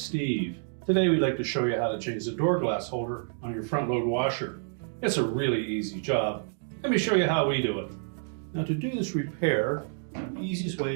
Steve. Today we'd like to show you how to change the door glass holder on your front load washer. It's a really easy job. Let me show you how we do it. Now to do this repair, the easiest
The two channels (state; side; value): silent; left; digital silence